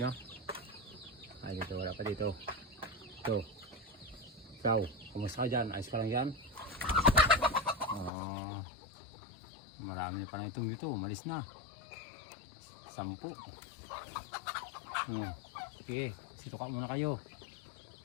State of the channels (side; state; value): right; drops out; at 8.1 s